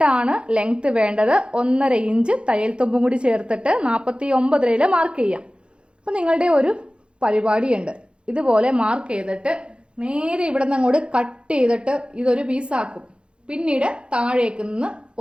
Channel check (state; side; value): late; left; 0.056 ms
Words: ലെങ്ത് വേണ്ടത്. 1.5 ഇഞ്ച് തയ്യൽ തുമ്പും കൂടി ചേർത്തിട്ട് 49 മാർക്ക് ചെയ്യാം. അപ്പൊ നിങ്ങളുടെ ഒരു പരിപാടിയുണ്ട്. ഇതുപോലെ മാർക്ക് ചെയ്തിട്ട് നേരെ ഇവിടെ നിന്ന് അങ്ങോട്ട് കട്ട് ചെയ്തിട്ട് ഇതൊരു പീസാക്കും. പിന്നീട് താഴേക്ക് നിന്ന്